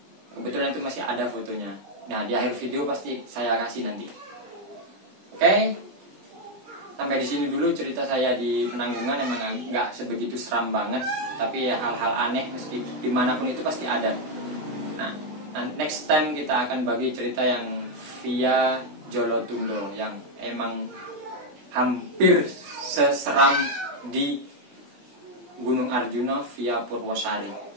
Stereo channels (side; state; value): left; late; 20 ms